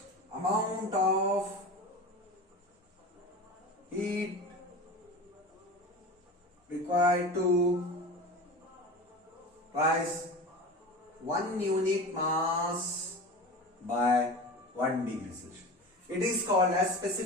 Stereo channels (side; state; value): both; normal; correlation 0.32